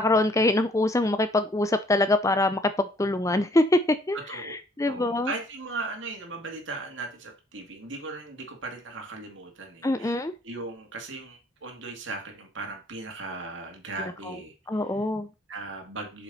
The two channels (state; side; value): normal; both; correlation 0.61